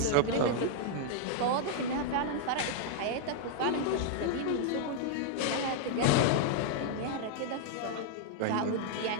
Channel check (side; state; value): both; different; correlation -0.01